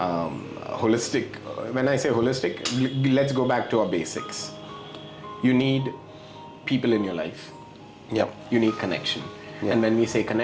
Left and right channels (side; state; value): both; identical; correlation 1.00